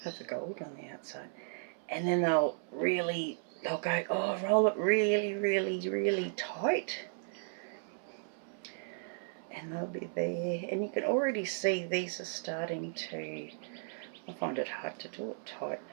Have the gold on the outside. And then they'll go, oh, roll it really, really, really tight. And they'll be there. And you can already see these are starting to, I find it hard to do it tight.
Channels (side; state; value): left; silent; 54 dB below the other